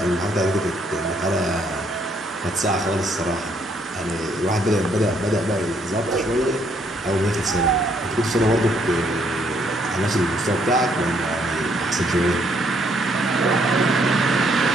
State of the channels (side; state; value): both; normal; correlation 0.69